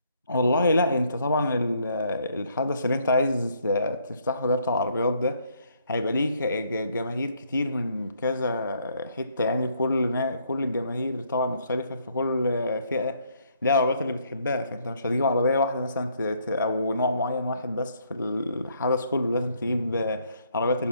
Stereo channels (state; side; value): inverted; both; correlation -0.69